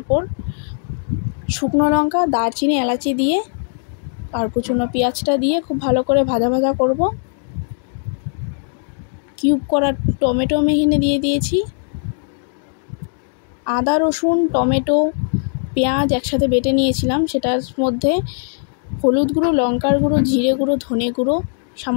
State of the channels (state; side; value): silent; right; digital silence